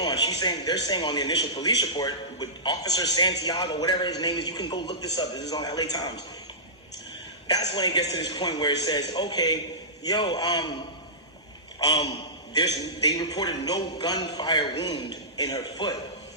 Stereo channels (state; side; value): normal; both; correlation -0.19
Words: on, they're saying on the initial police report with Officer Santiago, whatever his name is, you can go look this up. This is on LA Times. That's when it gets to this point where it says, okay, yo, they reported no gunfire wound in her foot.